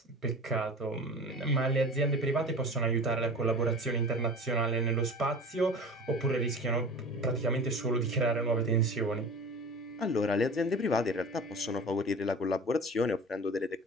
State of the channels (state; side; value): normal; both; correlation 0.37